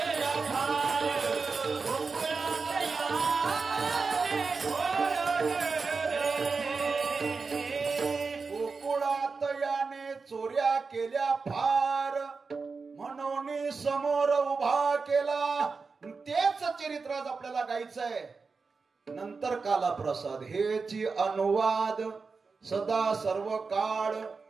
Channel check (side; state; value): left; quieter; 4.6 dB